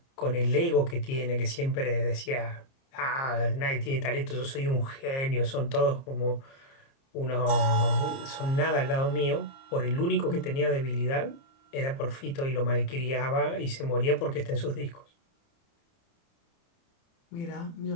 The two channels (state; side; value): late; right; 30 ms